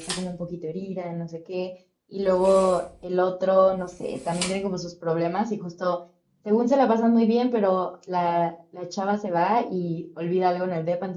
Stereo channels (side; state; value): both; identical; correlation 1.00